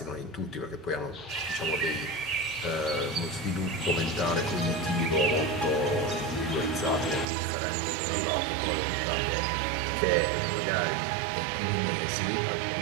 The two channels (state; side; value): drops out; left; at 7.2 s